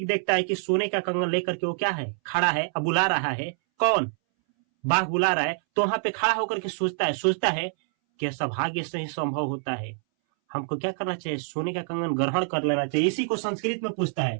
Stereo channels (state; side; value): silent; left; 61 dB below the other